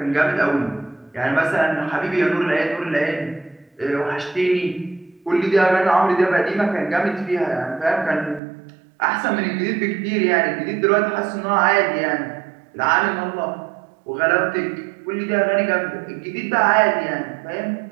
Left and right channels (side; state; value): left; drops out; at 8.4 s